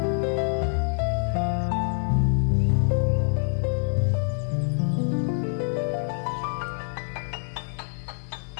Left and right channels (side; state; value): right; silent; digital silence